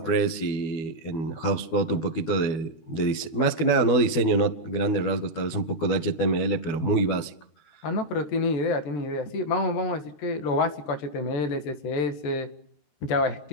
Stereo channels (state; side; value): late; right; 12 ms